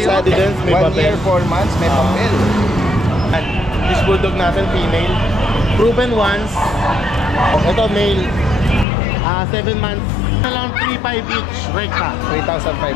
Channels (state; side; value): drops out; right; at 8.8 s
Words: 1 year, 4 months, may papel. This bulldog natin, female. Proven once. Ito, male. 7 months. Ito lang 3,500 each. Rekta.